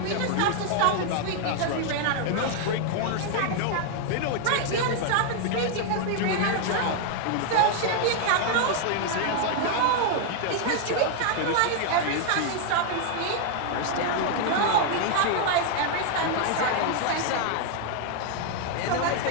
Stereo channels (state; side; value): different; both; correlation 0.00